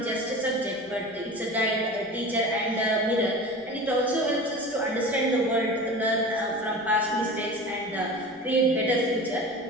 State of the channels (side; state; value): left; noise; rumble, 29 dB below the sound